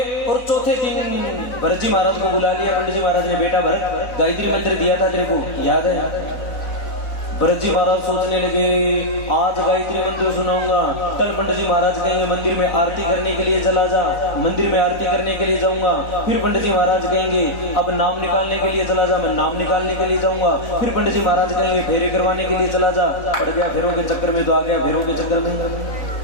और चौथे दिन भरत जी महाराज को बुला लिया पंडित जी महाराज ने। बेटा भरत गायत्री मंत्र दिया था तेरे को, याद है? भरत जी महाराज सोचने लगे, आज गायत्री मंत्र सुनाऊंगा, कल पंडित जी महाराज कहेंगे मंदिर में आरती करने के लिए चला जा, मंदिर में आरती करने के लिए जाऊंगा। फिर पंडित जी महाराज कहेंगे अब नाम निकालने के लिए चला जा, मैं नाम निकालने के लिए जाऊंगा। फिर पंडित जी महाराज कहेंगे फेरे करवाने के लिए चला जा, पड़ गया फेरों के चक्कर में, तो आ गया फेरों के चक्कर में।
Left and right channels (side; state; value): right; late; 4.0 ms